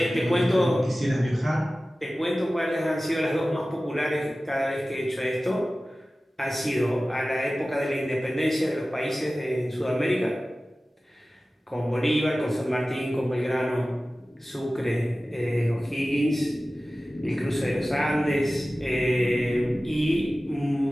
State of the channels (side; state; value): both; normal; correlation 0.96